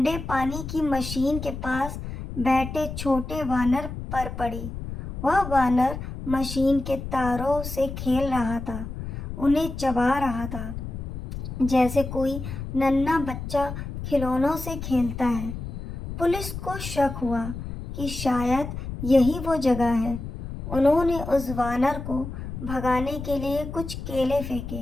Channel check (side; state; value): left; noise; rumble, 7 dB below the sound